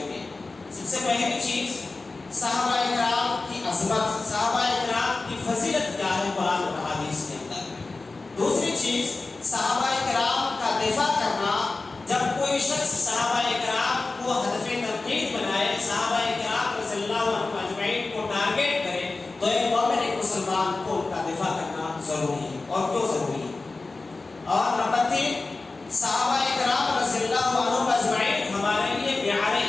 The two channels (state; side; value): quieter; right; 3.6 dB